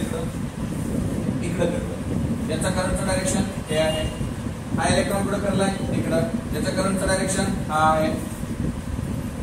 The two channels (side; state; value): both; identical; correlation 1.00